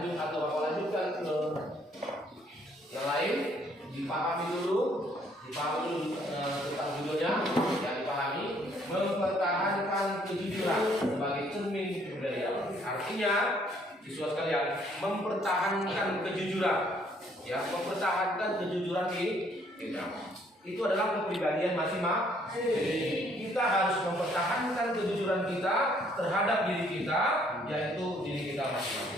atau lanjutkan ke yang lain, dipahami dulu tentang judulnya yang dipahami, mempertahankan kejujuran sebagai cermin kepribadian. Artinya, siswa sekalian, mempertahankan kejujuran, ya, mempertahankan kejujuran di kita. Itu adalah kepribadian masing-masing. Kita harus mempertahankan kejujuran kita terhadap diri kita, yaitu diri kita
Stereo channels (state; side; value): normal; both; correlation 0.65